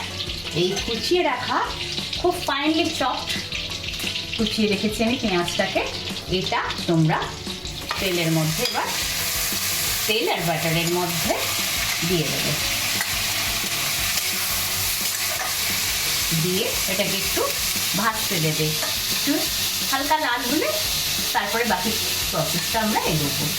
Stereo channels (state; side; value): identical; both; correlation 1.00